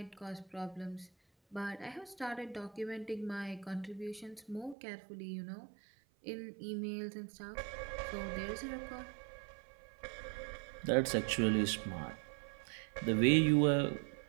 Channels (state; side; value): drops out; left; at 4.8 s